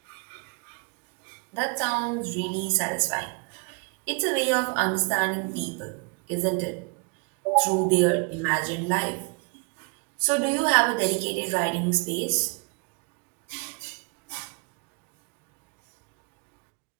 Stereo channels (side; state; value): left; quieter; 32.3 dB